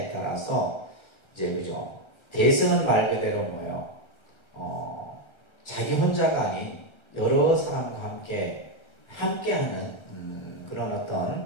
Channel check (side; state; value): right; late; 1.4 ms